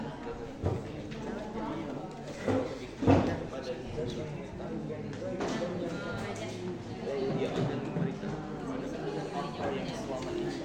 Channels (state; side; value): identical; both; correlation 1.00